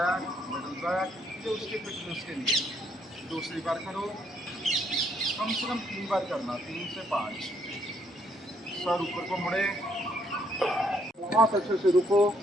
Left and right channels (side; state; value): both; normal; correlation 0.71